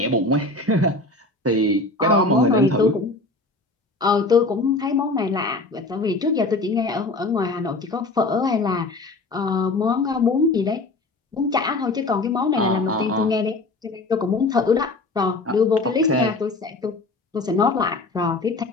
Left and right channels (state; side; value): quieter; right; 3.1 dB